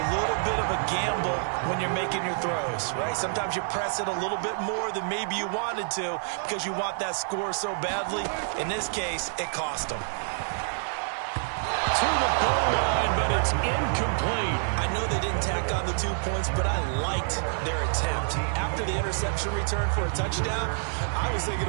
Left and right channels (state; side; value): silent; left; 60 dB below the other